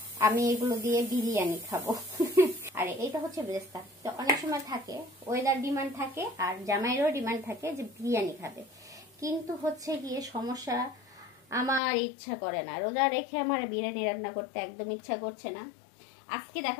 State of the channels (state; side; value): drops out; right; at 11.8 s